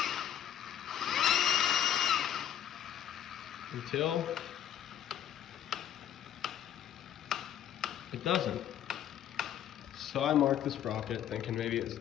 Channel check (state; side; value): quieter; right; 10.2 dB